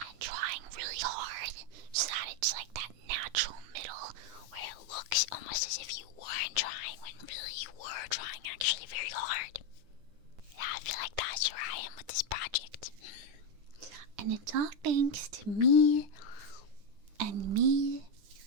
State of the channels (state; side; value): late; left; 9.7 ms